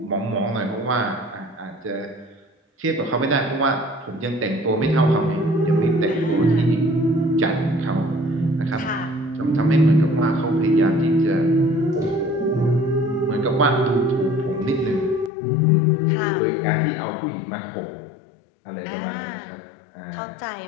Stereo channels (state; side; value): drops out; right; at 15.3 s